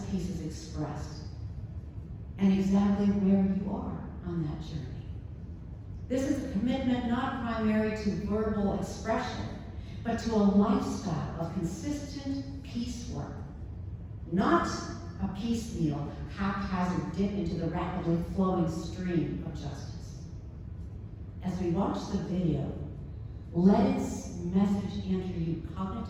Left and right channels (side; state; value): both; identical; correlation 1.00